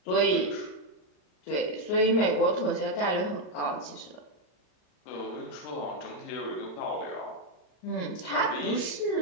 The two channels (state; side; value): late; right; 39 ms